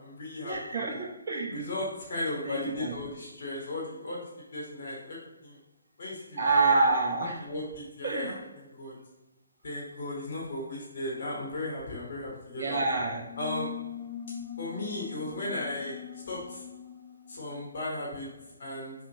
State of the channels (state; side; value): inverted; both; correlation -0.62